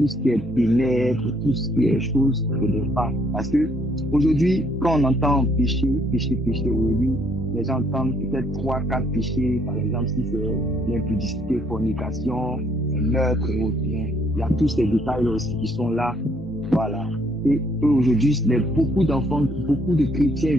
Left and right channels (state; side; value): normal; both; correlation 0.67